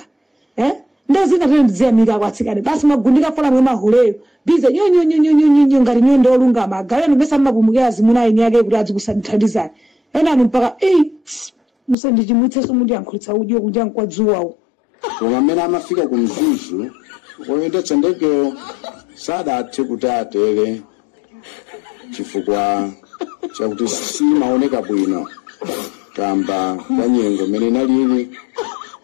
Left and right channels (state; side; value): drops out; right; at 12.0 s